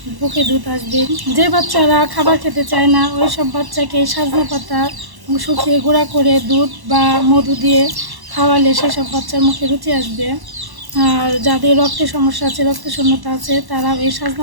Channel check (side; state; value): left; late; 1.1 ms